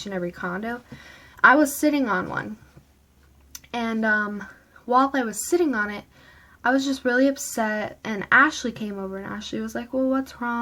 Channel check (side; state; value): both; identical; correlation 1.00